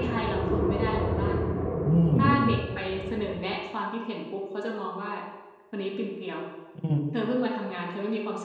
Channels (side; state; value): both; identical; correlation 1.00